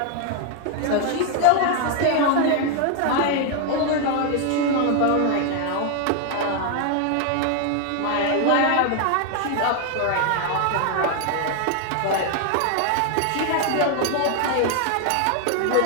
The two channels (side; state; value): both; different; correlation 0.00